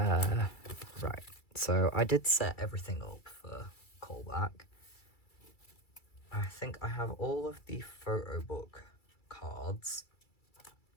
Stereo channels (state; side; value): late; right; 2.3 ms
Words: so I did set everything up for callback. I think I have all of the photo book cards,